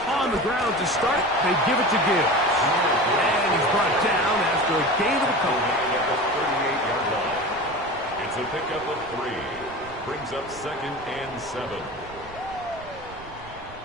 On the ground to start, they give it to Gibbs. And he's brought down after a gain of a couple. At the 38-yard line. It's a pickup of 3. Brings up 2nd and 7.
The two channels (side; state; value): right; noise; rumble, 19 dB below the sound